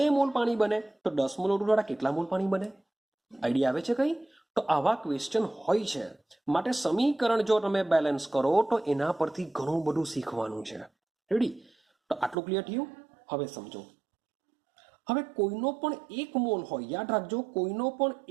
મોલ પાણી બને, તો 10 મોલ O2 દ્વારા કેટલા મોલ પાણી બને? આઈડિયા આવે છે કંઈ? તો આવા ક્વેશ્ચન હોય છે. માટે સમીકરણ જો તમે બેલેન્સ કરો તો એના પરથી ઘણું બધું શીખવાનું છે. રેડી? તો આટલું ક્લિયર થયું? હવે સમજો, હવે કોઈનો પણ 1 મોલ હોય, યાદ રાખજો, કોઈનો પણ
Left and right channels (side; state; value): left; drops out; at 12.4 s